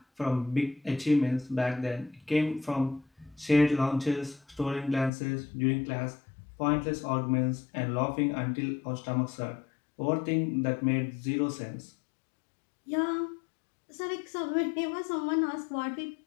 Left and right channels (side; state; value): right; drops out; at 5.1 s